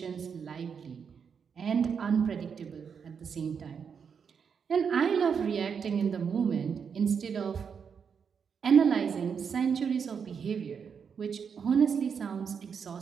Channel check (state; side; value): quieter; left; 6.6 dB